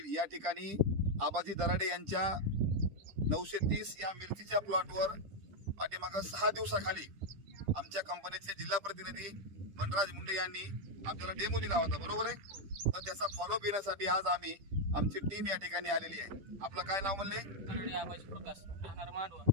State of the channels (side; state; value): left; late; 10 ms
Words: या ठिकाणी आबाजी दराडे यांच्या 930 या मिरचीच्या प्लॉटवर पाठीमागं 6 दिवसाखाली आमच्या कंपनीचे जिल्हा प्रतिनिधी मनराज मुंडे यांनी आपल्याला डेमो दिला होता, बरोबर आहे. तर त्याचा फॉलोअप घेण्यासाठी आज आम्ही आमची टीम या ठिकाणी आलेली आहे. आपलं काय नाव म्हणले? दराडे आबाजी प्रकाश, राहणार मांडवा,